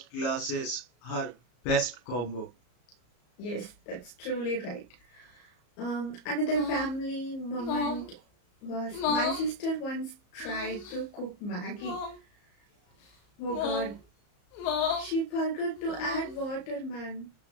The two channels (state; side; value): late; right; 34 ms